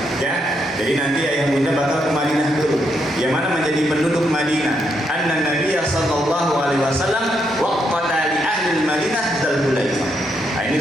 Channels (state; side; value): normal; both; correlation 0.78